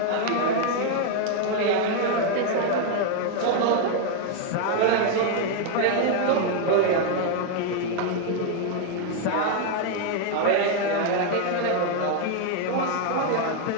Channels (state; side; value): different; both; correlation 0.00